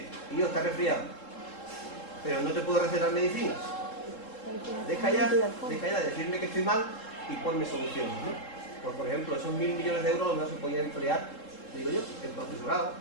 tío, estás resfriado, pero no te puedo recetar medicinas. Deja ya de decirme que estoy mal y ponme soluciones, ¿no? Pues por ejemplo, esos 1.000 millones de euros a lo mejor se podían emplear, digo yo, en profesorado,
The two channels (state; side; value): late; right; 3.7 ms